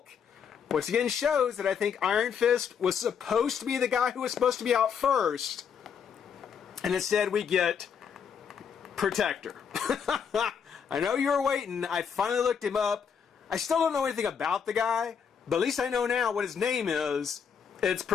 which again shows that I think Iron Fist was supposed to be the guy who was supposed to be out first, and instead we get Protector. I know you were waiting. I finally looked him up. I still don't know anything about the guy, but at least I know now what his name is. It's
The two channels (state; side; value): quieter; right; 7.1 dB